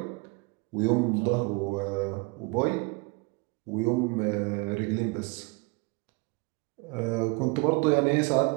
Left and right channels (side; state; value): left; quieter; 28.3 dB